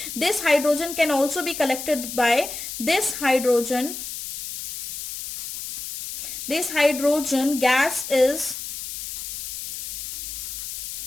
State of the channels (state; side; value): noise; left; hiss, 8 dB below the sound